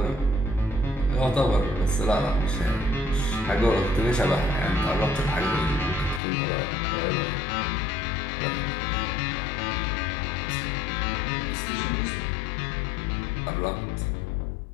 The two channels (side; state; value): right; drops out; at 6.2 s